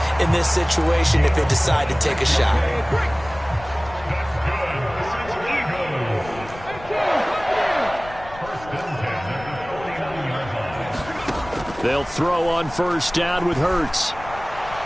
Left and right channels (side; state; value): left; noise; rumble, 17 dB below the sound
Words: in this situation if they decide to take a shot. They'll throw on first down with Hurts.